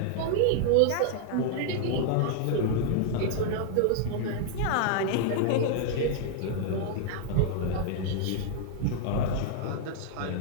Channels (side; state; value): both; different; correlation 0.00